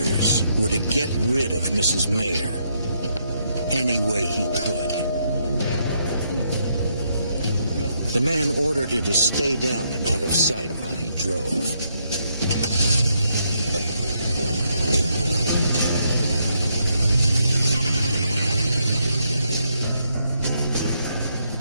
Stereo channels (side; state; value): both; inverted; correlation -0.76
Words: were to get rid of Mrs. Mayer any way he could. The man ordered her to stay down and out of sight while he drove.